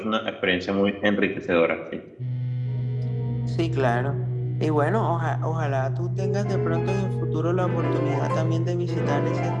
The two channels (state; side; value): identical; both; correlation 1.00